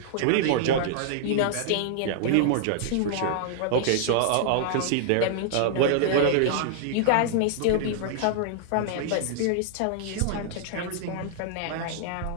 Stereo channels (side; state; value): both; different; correlation -0.01